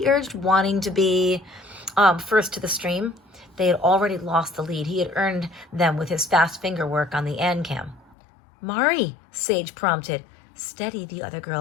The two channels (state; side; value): drops out; right; at 8.2 s